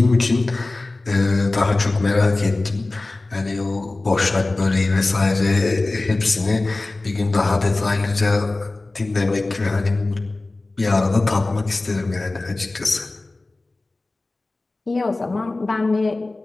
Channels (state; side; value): quieter; right; 3.1 dB